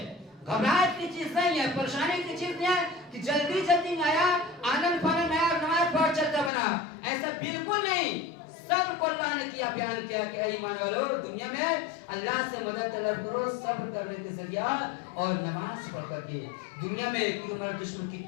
گھبراہٹ کی چیز نہیں ہے، پریشانی کی چیز نہیں ہے کہ جلدی جلدی آیا، آنند فانند آیا، نماز پڑھ چلتا بنا، ایسا بالکل نہیں۔ صبر کو اللہ نے کیا بیان کیا کہ اے ایمان والو، دنیا میں اللہ سے مدد طلب کرو صبر کرنے کے ذریعہ اور نماز پڑھ کر کے۔ دنیا میں کہ ہمارا دشمن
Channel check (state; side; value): drops out; right; at 6.5 s